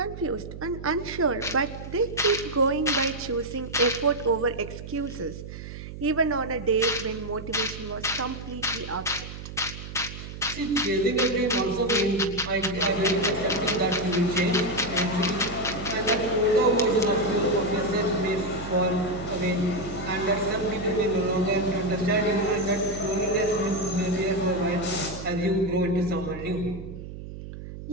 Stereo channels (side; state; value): right; noise; hum, 11 dB below the sound